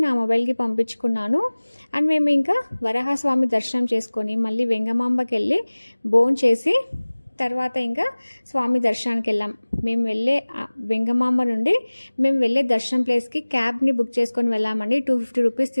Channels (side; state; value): both; inverted; correlation -1.00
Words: నా మొబైల్కి పంపించుకున్నాను. అండ్ మేము ఇంకా వరాహస్వామి దర్శనం చేసుకొని మళ్ళీ వెంగమాంబకి వెళ్ళి భోజనం చేసి తర్వాత ఇంకా స్వామి దర్శనానికి వెళ్ళాం. మేము వెళ్ళే వెంగమాంబ నుండి మేము వెళ్ళే దర్శనం ప్లేస్కి క్యాబ్ని బుక్ చేసుకొని వెళ్ళామండి. 250 రూపీస్